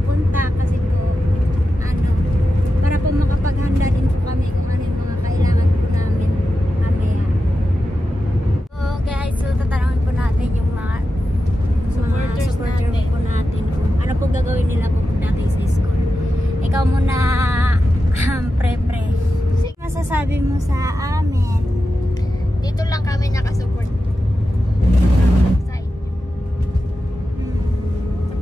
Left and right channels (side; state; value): both; normal; correlation 0.91